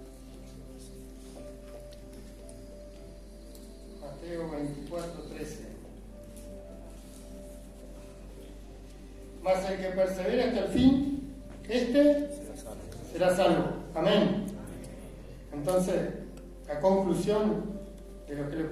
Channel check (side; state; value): both; identical; correlation 1.00